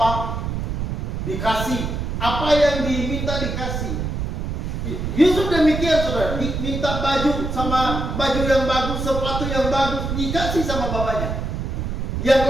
dikasih, apa yang diminta dikasih. Yusuf demikian saudara, diminta baju yang bagus, sepatu yang bagus, dikasih sama bapaknya. Yang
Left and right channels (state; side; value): noise; right; rumble, 3 dB below the sound